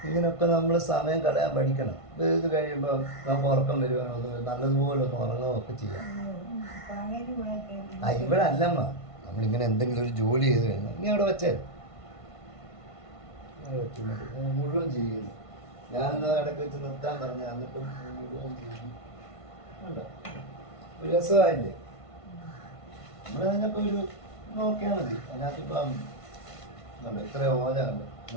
ഇങ്ങനൊക്കെ നമ്മൾ സമയം കളയാൻ പഠിക്കണം. ഇത് കഴിയുമ്പോൾ നമുക്ക് ഉറക്കം വരുവാണോ, നല്ലതുപോലെ ഒന്ന് ഉറങ്ങുകയൊക്കെ ചെയ്യാം. ഇവിടെ അല്ലമ്മ, നമ്മളിങ്ങനെ എന്തെങ്കിലും ഒരു ജോലി ചെയ്ത് കഴിഞ്ഞാൽ നീ അവിടെ വെച്ചേ മുഴുവൻ ചെയ്യുന്നു. ഞാനെന്നാ ഇടയ്ക്ക് വെച്ച് നിർത്താൻ പറഞ്ഞു, എന്നിട്ടും ഉണ്ടോ ഒരു രസമായില്ലേ? നമ്മൾ അതിനപ്പോൾ ഒരു നോക്കിയാൽ മതി. അതിനകത്തിപ്പം കണ്ടോ ഇത്ര ഓല കണ്ടോ,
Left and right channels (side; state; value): right; late; 1.5 ms